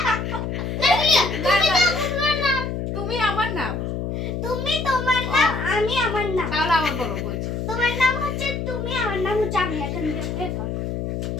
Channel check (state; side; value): noise; left; hum, 3 dB below the sound